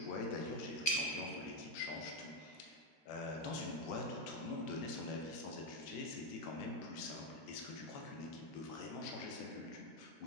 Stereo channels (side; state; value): right; late; 13 ms